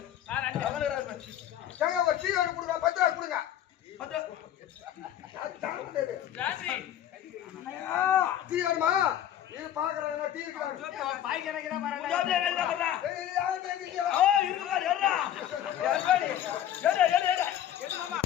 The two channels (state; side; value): quieter; right; 11.2 dB